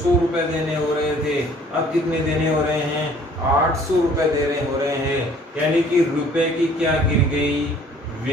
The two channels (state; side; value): normal; both; correlation 0.55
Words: रुपए देने हो रहे थे, अब कितने देने हो रहे हैं, 800 रुपए देने हो रहे हैं। यानी कि रुपए की क्या गिर गई,